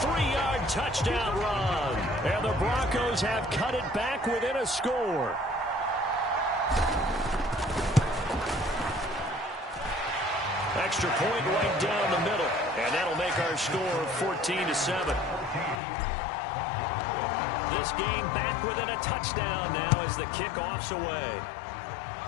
touchdown run. And the Broncos have cut it back within a score. Extra point right down the middle. And that'll make our score 14-7. This game back within a touchdown now as the kickoff's away.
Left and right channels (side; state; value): right; drops out; at 15.8 s